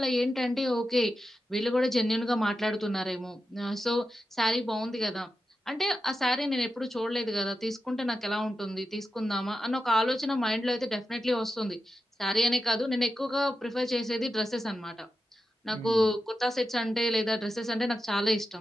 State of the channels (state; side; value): normal; both; correlation 0.90